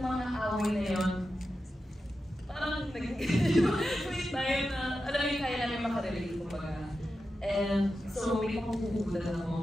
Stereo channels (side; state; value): both; normal; correlation 0.91